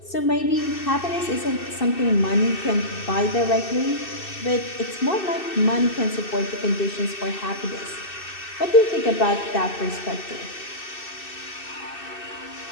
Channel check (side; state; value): right; late; 2.6 ms